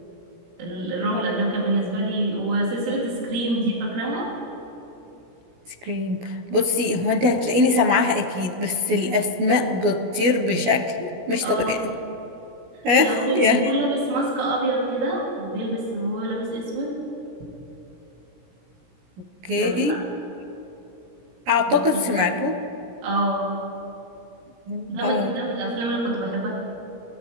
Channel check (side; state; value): left; late; 17 ms